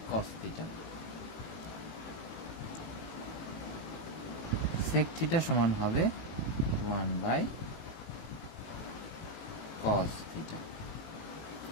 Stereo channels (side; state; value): right; late; 18 ms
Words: থিটা। সেক থিটা সমান হবে 1/কস থিটা।